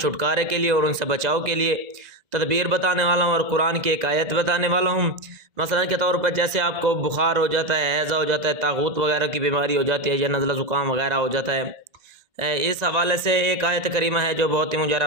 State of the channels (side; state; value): left; late; 2.0 ms